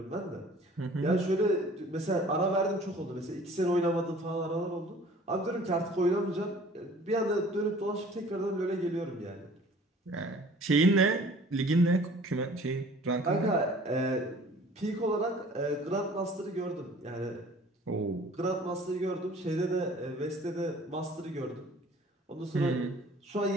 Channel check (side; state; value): both; normal; correlation 0.50